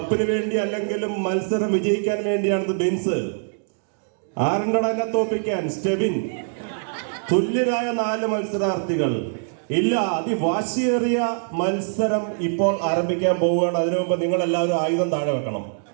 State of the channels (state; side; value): silent; left; digital silence